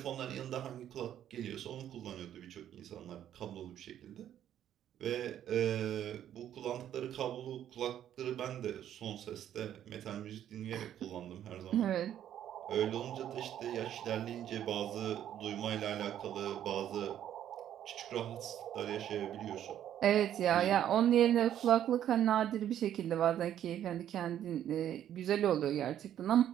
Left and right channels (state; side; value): quieter; left; 10.8 dB